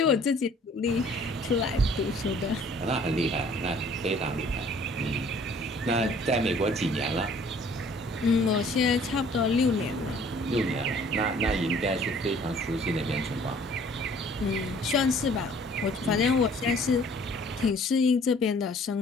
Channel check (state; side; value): normal; both; correlation 0.55